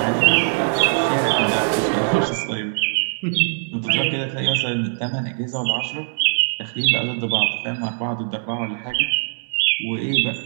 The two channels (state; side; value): silent; left; digital silence